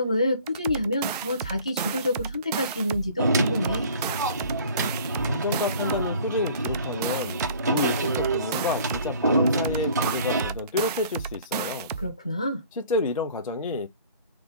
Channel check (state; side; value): inverted; both; correlation -0.50